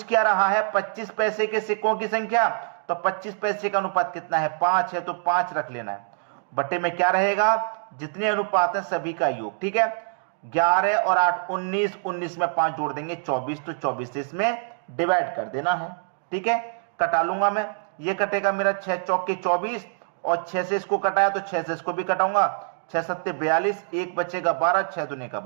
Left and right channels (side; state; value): left; silent; digital silence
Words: क्या रहा है, 25 पैसे के सिक्कों की संख्या, तो 25 पैसे का अनुपात कितना है, 5 है, तो 5 रख लेना है। बटे में क्या रहेगा, जितने अनुपात है सभी का योग। ठीक है, 11 और 8 19, 19 में 5 जोड़ देंगे 24, तो 24 से इसमें डिवाइड कर देना है। ठीक है, कटा लूंगा मैं, ये कटेगा मेरा 6 चौके 24, और 6 से इसको कटाया तो 6 से इसको भी कटाऊंगा, 6 सत्ते 42, एक बचेगा 12, 6 दूने का